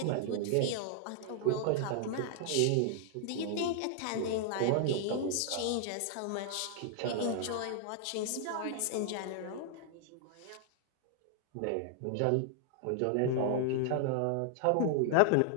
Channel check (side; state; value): both; different; correlation -0.01